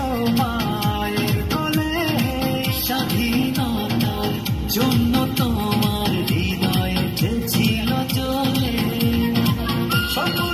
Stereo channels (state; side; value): identical; both; correlation 1.00